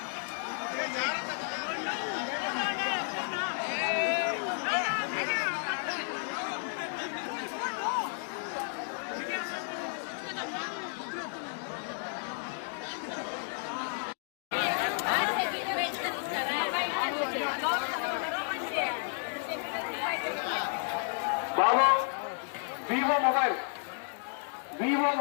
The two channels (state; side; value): silent; right; 55 dB below the other